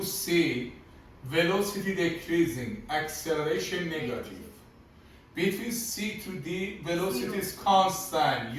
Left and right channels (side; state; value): both; identical; correlation 1.00